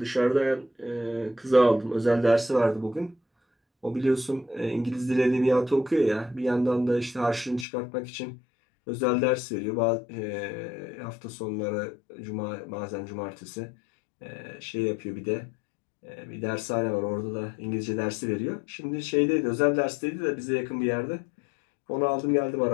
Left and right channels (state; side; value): drops out; right; at 7.7 s